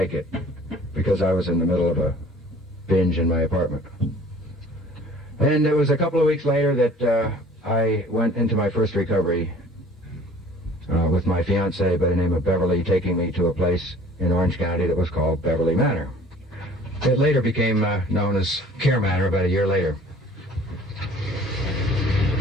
it because I was in the middle of a binge in my apartment. And it was a couple of weeks later that I went into my first recovery with my fiancée by the name of Beverly, taking me to a place in Orange County that was called Beverly Manor. It later became known as Care Manor about a year later.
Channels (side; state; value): both; normal; correlation 0.50